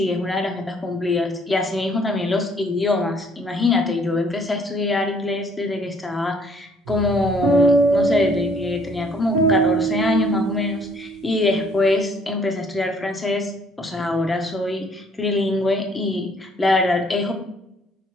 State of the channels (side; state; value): both; normal; correlation 0.61